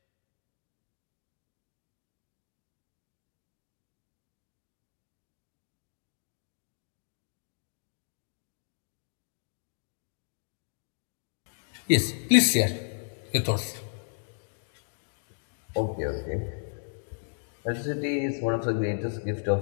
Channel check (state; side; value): silent; right; digital silence